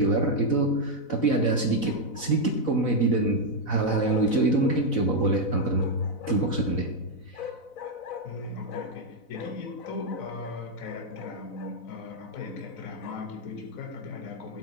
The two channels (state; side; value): late; right; 4.0 ms